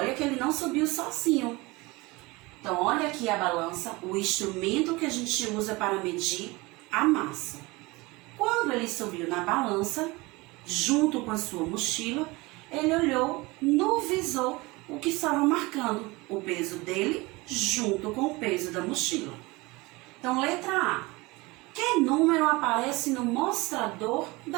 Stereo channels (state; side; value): quieter; left; 23.1 dB